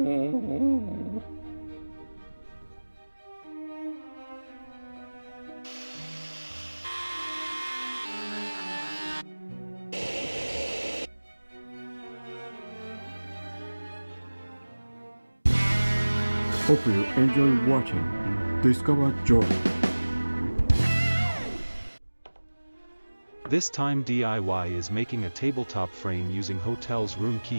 Hope you enjoy watching Discover Joy. This time DIY is making a tabletop frame using hotel's room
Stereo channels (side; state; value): both; inverted; correlation -1.00